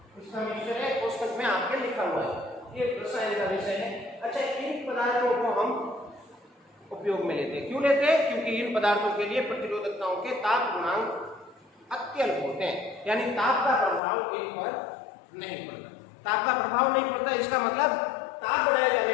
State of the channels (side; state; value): right; drops out; at 14.0 s